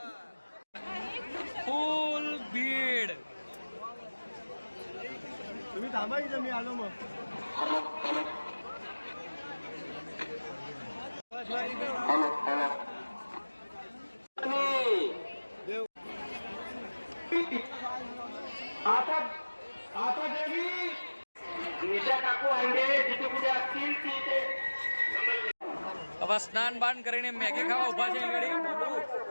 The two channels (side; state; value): both; inverted; correlation -1.00